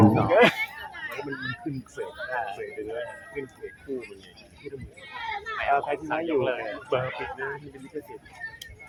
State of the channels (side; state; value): both; identical; correlation 1.00